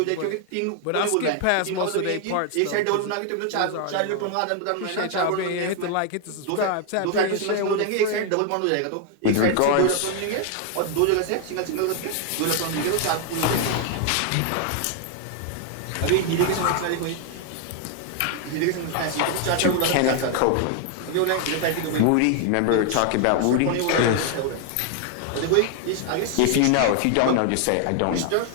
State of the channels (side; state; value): both; different; correlation 0.00